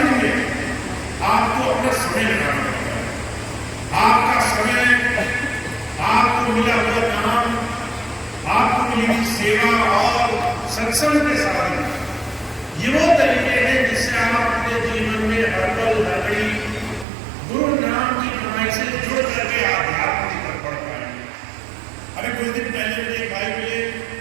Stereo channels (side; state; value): left; drops out; at 17.1 s